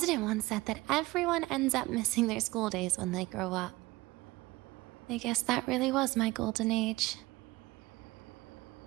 once said that everyone ends up missing their school days when they grow up. I guess that really was my golden age.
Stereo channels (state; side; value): quieter; left; 20.5 dB